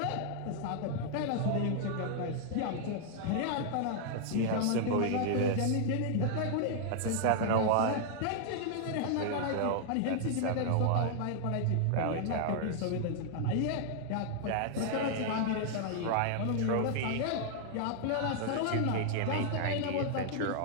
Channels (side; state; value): both; different; correlation -0.01